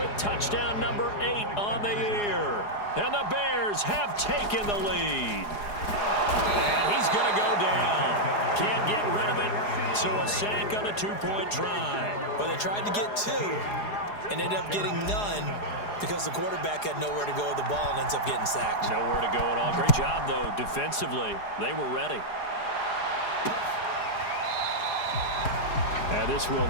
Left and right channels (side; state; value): right; late; 4.9 ms